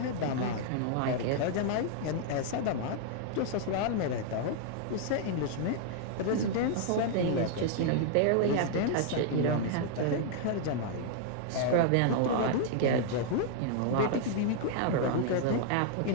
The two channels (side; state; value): both; different; correlation -0.01